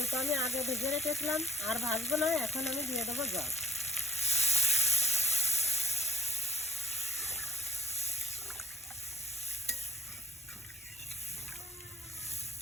আমি আগে ভেজে রেখেছিলাম, আর ভাজবো না। এখন আমি দিয়ে দেবো জল।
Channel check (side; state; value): both; normal; correlation 0.62